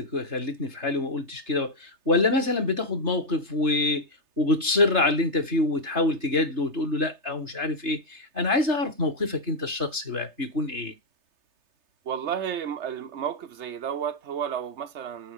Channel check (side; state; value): left; late; 3.3 ms